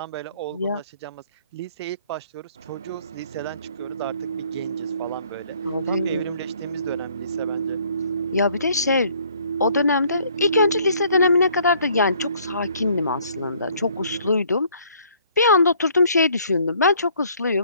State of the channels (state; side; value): inverted; both; correlation -0.61